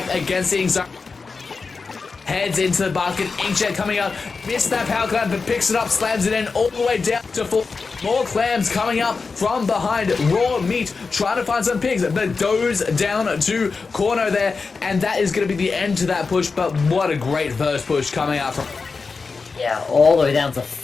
against the Inkxiety. Heads into the basket, Inkjet coming out, missed that power clam, but picks it up, slams it in all the way down to full. More clams coming up from behind. Raw meat trying to find some pigs, but goes down to corner there, and that is going to be the end to that push. But what a great first push coming out from. Yeah, all the way down to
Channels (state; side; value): quieter; right; 4.5 dB